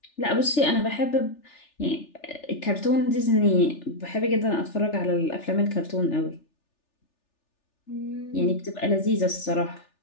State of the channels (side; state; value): right; late; 3.4 ms